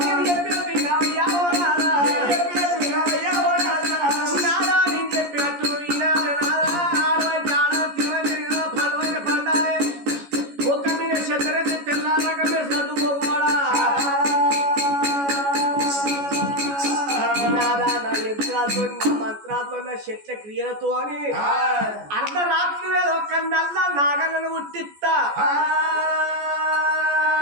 మంత్రాలతో చెట్ల క్రియలతో అని అర్ధరాత్రి వేళ ఒక నల్ల నాగలను ఉట్టిస్తా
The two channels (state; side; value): late; left; 14 ms